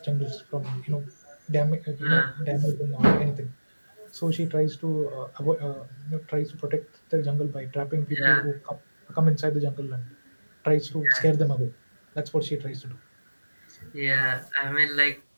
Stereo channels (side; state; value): both; inverted; correlation -1.00